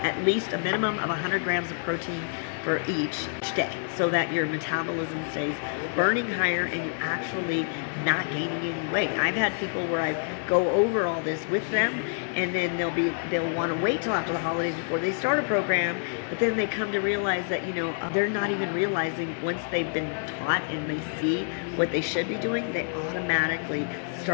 At least a minimum of 100 grams of protein for each day, so that your metabolism stays burning higher and you're actually not gaining any weight. I've had people where I go over all this with them, and then they'll want to wait till after the holidays before they start a program, but then they come to realize that they're not even realizing, once they've been taught and they see what they should be doing, they automatically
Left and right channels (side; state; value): right; silent; digital silence